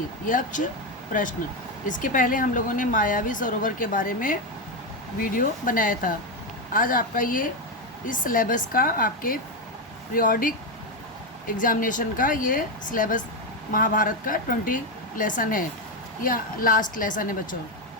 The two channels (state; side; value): normal; both; correlation 0.08